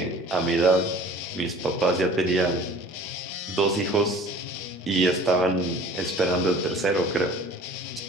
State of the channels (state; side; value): normal; both; correlation 0.47